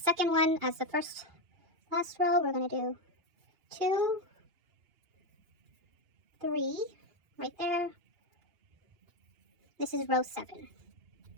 one, as the last row, we're going to do 2, 3, right there. This is row 7.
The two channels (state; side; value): late; left; 2.7 ms